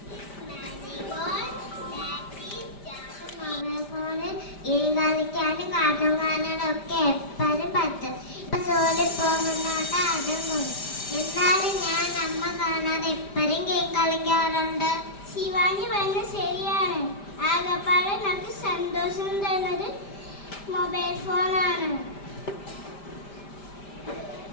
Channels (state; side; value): late; right; 5.0 ms